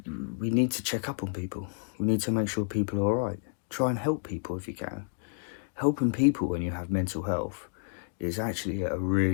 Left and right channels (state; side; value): silent; right; digital silence